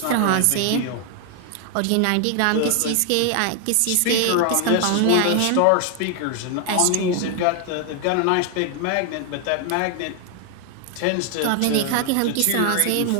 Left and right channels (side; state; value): both; different; correlation 0.00